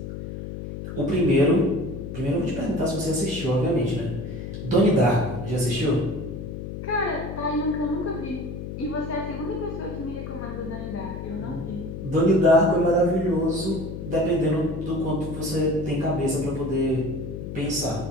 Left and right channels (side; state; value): left; noise; hum, 7 dB below the sound